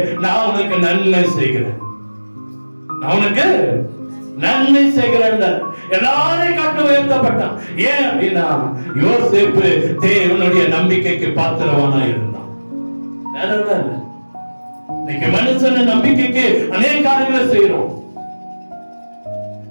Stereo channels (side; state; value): both; inverted; correlation -1.00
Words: நான் உனக்கு நன்மை செய்கிறேன், நான் உனக்கு நன்மை செய்கிறேன். எல்லாரையும் காட்டு உயர்த்தப்பட்டான். ஏன் அப்படின்னா யோசேப்பு தேவனுடைய நம்பிக்கைக்கு பாத்திரவானா இருந்தான். இன்னைக்கு மனுஷன் நம்பிக்கைக்கு அநேக காரியங்களை செய்யறோம்.